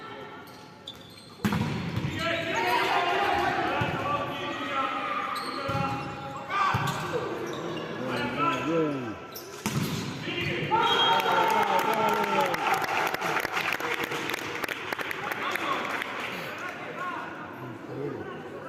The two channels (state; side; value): identical; both; correlation 1.00